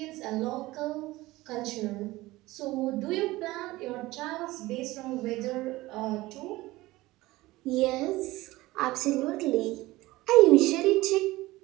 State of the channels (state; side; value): quieter; left; 18.9 dB